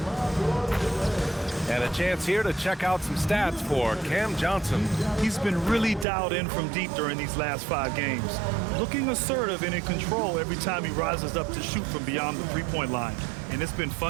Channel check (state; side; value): drops out; left; at 6.1 s